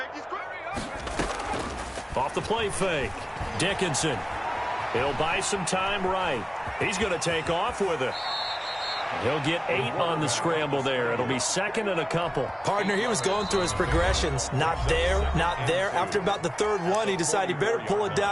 creeping. Off the play fake. Dickinson. He'll buy some time right. He's going to take off with it. He'll get 8 on the scramble there. It'll be 2nd and a couple. Partner, he was going through his progressions. Not there, not there. After about the 3rd one, he decided he better pull it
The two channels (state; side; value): identical; both; correlation 1.00